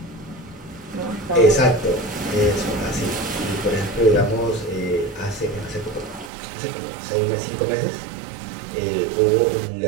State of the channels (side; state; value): left; drops out; at 6.3 s